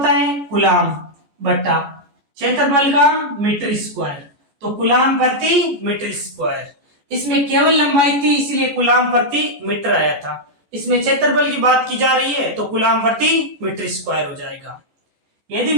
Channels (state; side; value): late; left; 14 ms